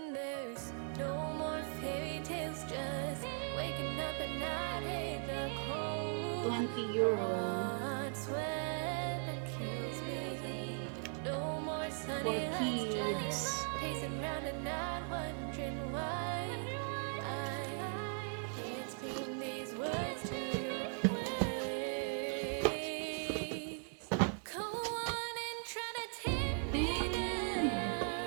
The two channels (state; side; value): silent; left; 52 dB below the other